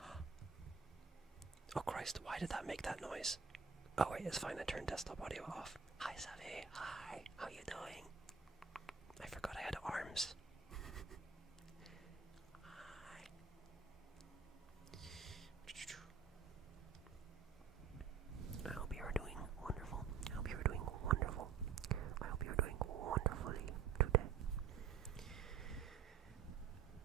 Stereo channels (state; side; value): quieter; left; 6.3 dB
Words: Oh Christ, why did that make that noise? Oh wait, it's fine, I turned desktop audio off. Hi Savvy. Hi. How you doing? I forgot I had arms. Hi.